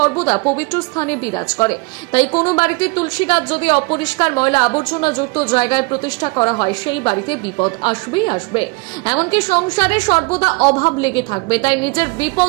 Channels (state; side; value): quieter; left; 28.5 dB